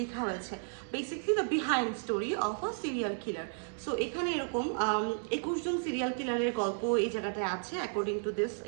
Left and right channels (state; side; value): silent; left; 56 dB below the other